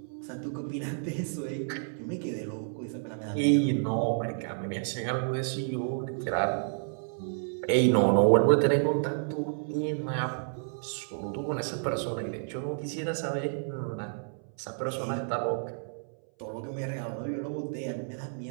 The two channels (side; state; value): left; silent; 58 dB below the other